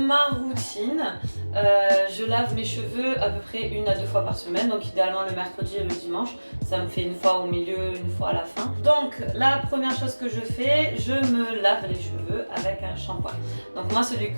routine, je lave mes cheveux à peu près 1 à 2 fois par semaine, donc idéalement le mercredi et le dimanche. Ça me fait une fois au milieu, une fois à la fin. Donc la première chose que je fais, je me lave les cheveux avec un shampoing. Donc moi celui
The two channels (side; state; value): both; inverted; correlation -1.00